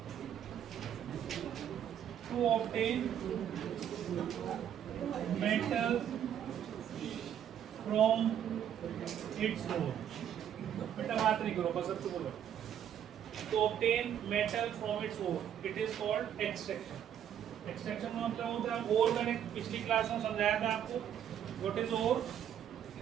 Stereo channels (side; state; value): left; quieter; 9.7 dB